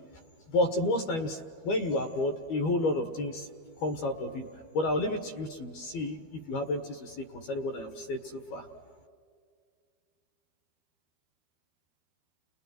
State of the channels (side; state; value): right; late; 12 ms